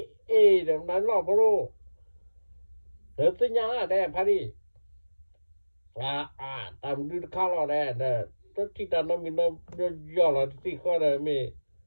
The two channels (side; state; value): both; inverted; correlation -1.00